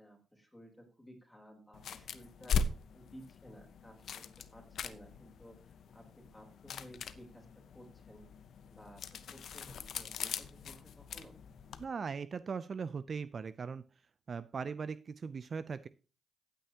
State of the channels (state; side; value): normal; both; correlation 0.73